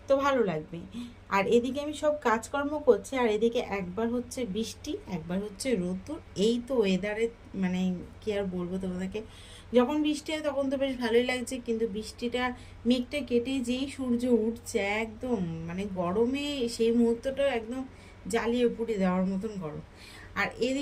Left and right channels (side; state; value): both; identical; correlation 1.00